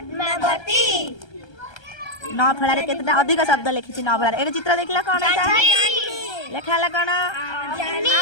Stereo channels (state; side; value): late; right; 1.3 ms